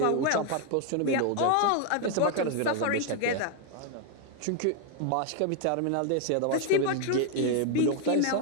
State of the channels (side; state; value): both; different; correlation 0.01